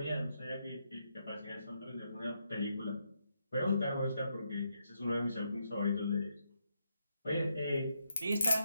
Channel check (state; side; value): inverted; both; correlation -0.80